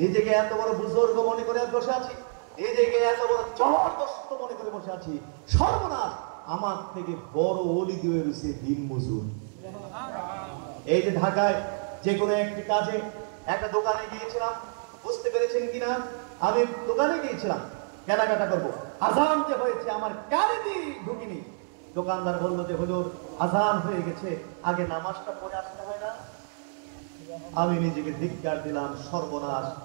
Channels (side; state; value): left; silent; digital silence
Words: নিজেকে এত বড় বুজুর্গ মনে করে বসে আছি, নিজেকে এত বড় জবরদস্ত মনে করে বসে আছি। সর্বনাশ, আমার থেকে বড় ওলি দিয়ে রয়েছে দিন মজুর। এই যে ঢাকায় যে কোনো একটি কাজে একটা দোকানে গিয়েছিলাম, বুঝতে পেরেছেন কিনা, আমি দোকানে গিয়েছিলাম কেনাকাটা করবো, আজান যে হয়েছে আমার কানে দিয়ে ঢুকিনি। দোকানদার বললো যে হুজুর আজান হয়ে গেছে, আগে নামাজটা পড়ে আসতে হয় না? আমি নিজেকে ধিক্কার দিলাম, সর্বনাশ।